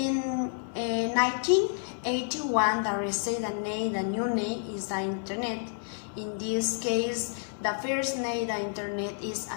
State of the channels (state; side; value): silent; right; 58 dB below the other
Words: 1981, the received the new name is the internet. In this case, the first name the internet is